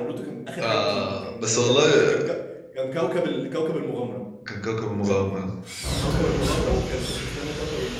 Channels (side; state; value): both; identical; correlation 1.00